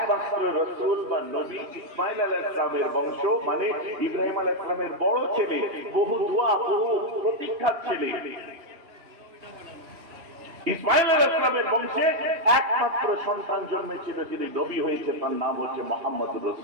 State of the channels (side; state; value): left; late; 3.0 ms